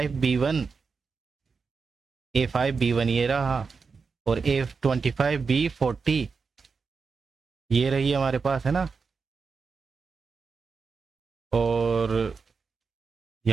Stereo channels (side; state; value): left; quieter; 5.0 dB